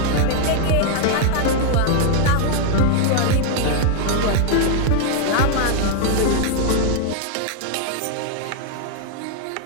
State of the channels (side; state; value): both; different; correlation 0.00